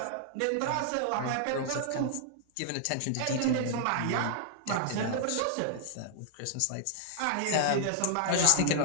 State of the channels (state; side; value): different; both; correlation -0.01